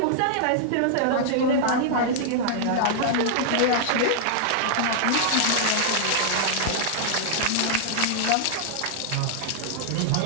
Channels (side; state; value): both; different; correlation -0.01